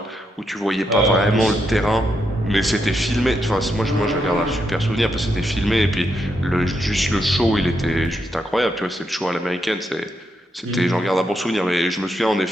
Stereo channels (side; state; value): both; normal; correlation 0.81